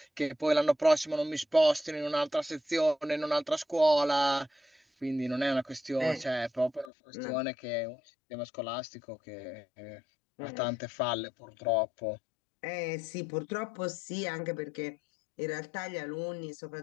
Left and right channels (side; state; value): right; drops out; at 6.9 s